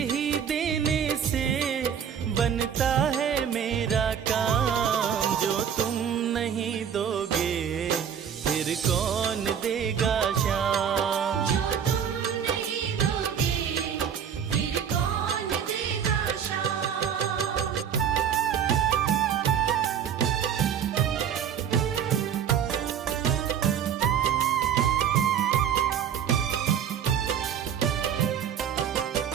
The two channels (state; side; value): quieter; left; 8.3 dB